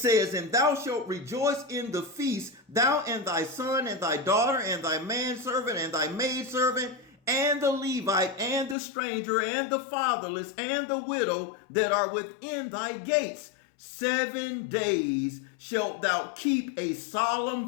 and thou shalt rejoice in the feast, thou and thy son and thy daughter and thy manservant and thy maidservant and the Levite and the stranger and the fatherless and the widow that are within thy gates. 7 days shalt thou keep a solemn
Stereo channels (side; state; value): right; drops out; at 8.8 s